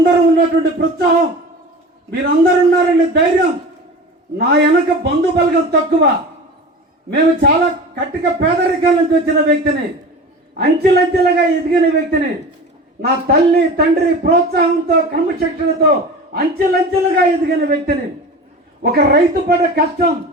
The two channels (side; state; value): both; normal; correlation 0.34